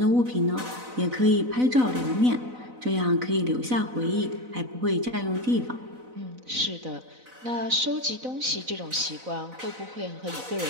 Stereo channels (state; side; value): late; left; 4.0 ms